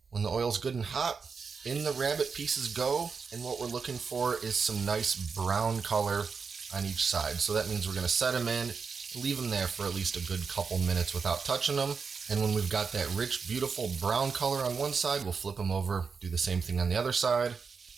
When the oil's good and hot, in the rabbit pieces go, and what we're looking for is some nice brown color on each side. So that means we're going to set them in, leave them there for at least a good couple minutes without touching them. And when we've got that rich, beautiful brown color on one side, we'll flip them over, do the same thing on the other side.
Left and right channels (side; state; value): left; quieter; 5.4 dB